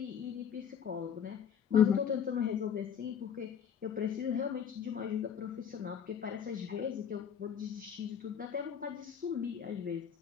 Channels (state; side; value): quieter; right; 8.0 dB